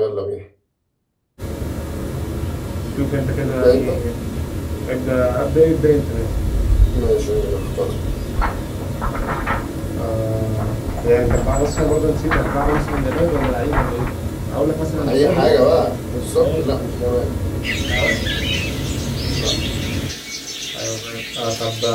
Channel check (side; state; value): both; identical; correlation 1.00